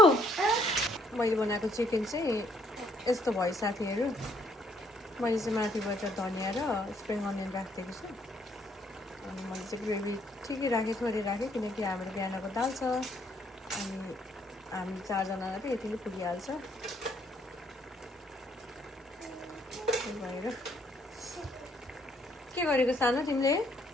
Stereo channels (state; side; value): normal; both; correlation 0.67